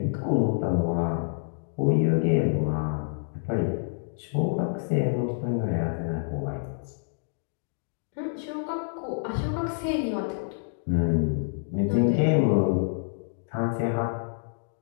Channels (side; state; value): right; silent; digital silence